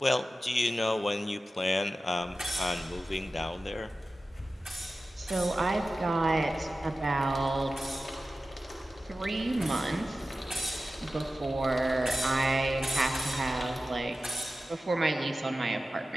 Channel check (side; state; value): both; normal; correlation 0.94